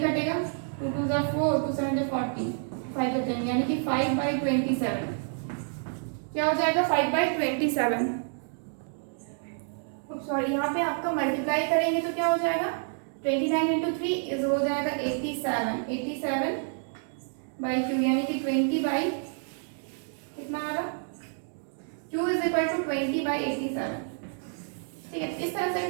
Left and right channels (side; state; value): left; silent; 59 dB below the other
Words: कटेगा, 2 2 जा 4, 2 7 जा 40, 5 जा 10 यानी कि 5/27 क्या हो जाएगा 5/27। सॉरी, यहाँ पे आपका मल्टीप्लाई करेंगे तो क्या हो जाएगा 29 इंटू 3 इज हो जाएगा 87 बाई क्यू यानी कि 20 बाई कितना आ रहा, q is equal to 20 by 87। ठीक है, इस तरह से